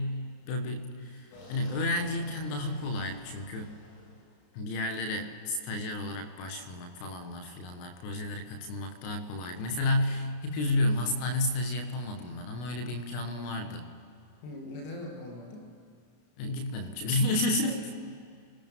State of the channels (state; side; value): late; right; 33 ms